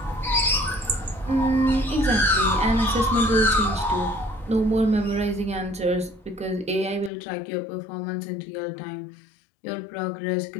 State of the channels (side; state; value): right; drops out; at 7.1 s